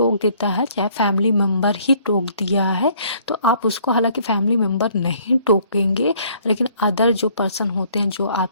देता है, चाहे फैमिली मेम्बर ही टोक दिया है, तो आप उसको, हालांकि फैमिली मेम्बर नहीं टोकेंगे, लेकिन अदर जो पर्सन होते हैं जो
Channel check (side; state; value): both; inverted; correlation -0.61